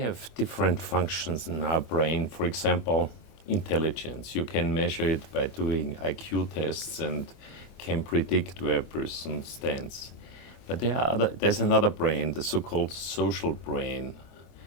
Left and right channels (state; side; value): late; right; 30 ms